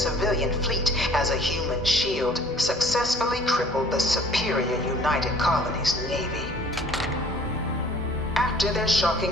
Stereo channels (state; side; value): normal; both; correlation 0.53